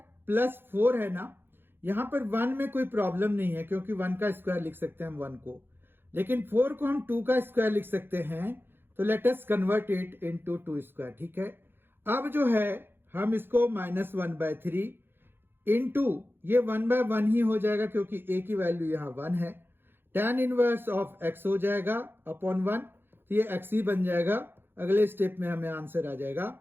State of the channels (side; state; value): left; late; 0.10 ms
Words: प्लस 4 है ना। यहां पर 1 में कोई प्रॉब्लम नहीं है क्योंकि 1 का स्क्वायर लिख सकते हैं हम 1 को, लेकिन 4 को हम 2 का स्क्वायर लिख सकते हैं। तो let us convert it into 2 square, ठीक है। अब जो है हम इसको -1/3 इंटू ये 1/1 ही हो जाएगा क्योंकि a की वैल्यू यहां 1 है। tan इनवर्स ऑफ x हो जाएगा अपॉन 1, तो ये x ही बन जाएगा। अगले स्टेप में हमें आंसर आ जाएगा।